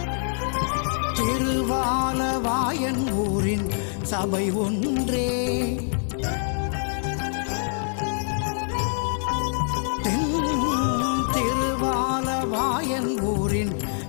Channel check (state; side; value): silent; right; digital silence